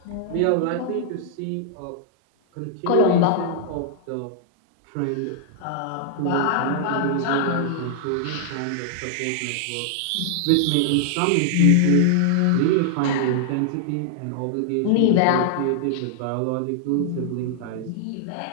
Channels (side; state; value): both; different; correlation -0.01